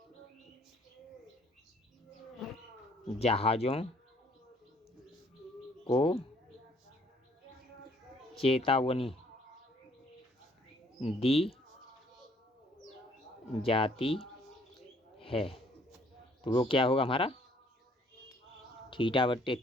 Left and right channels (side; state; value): both; normal; correlation 0.62